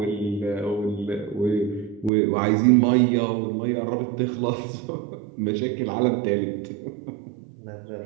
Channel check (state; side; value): drops out; left; at 2.1 s